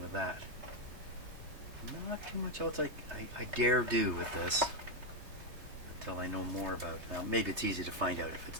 with that. Not too much else I dare do with this until I know more about it. Now maybe it's easy to find out if it's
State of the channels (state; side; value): late; left; 3.2 ms